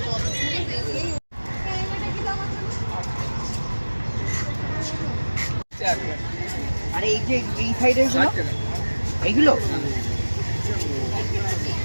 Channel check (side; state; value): both; inverted; correlation -1.00